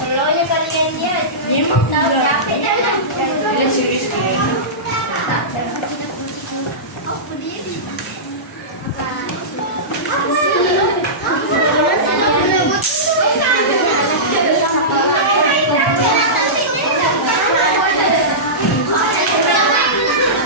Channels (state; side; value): normal; both; correlation -0.18